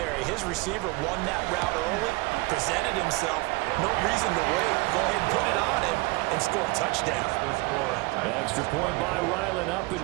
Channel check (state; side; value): quieter; left; 24.6 dB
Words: His receiver won that route early, presented himself. No reason to wait. Go ahead and put it on him and score a touchdown. Extra point by Ryland, up and